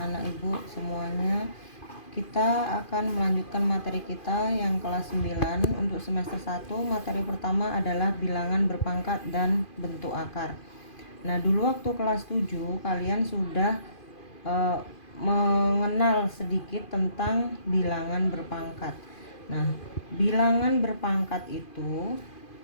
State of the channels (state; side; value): late; right; 2.5 ms